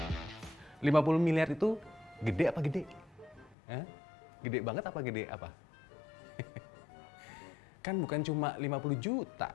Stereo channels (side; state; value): right; drops out; at 3.6 s